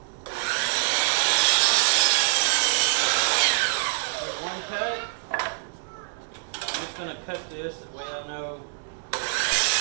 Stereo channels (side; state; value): left; silent; digital silence